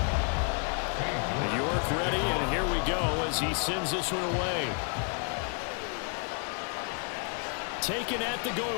as he sends this one away. Taken at the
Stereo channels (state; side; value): quieter; right; 39.3 dB